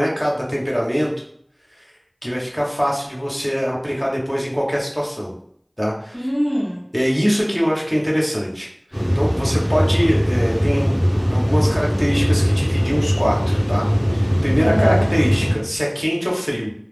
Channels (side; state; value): both; identical; correlation 1.00